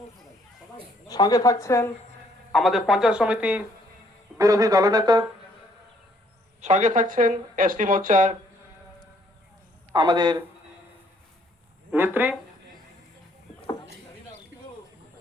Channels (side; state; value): both; normal; correlation 0.66